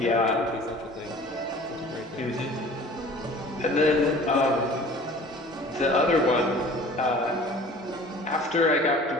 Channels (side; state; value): both; normal; correlation 0.45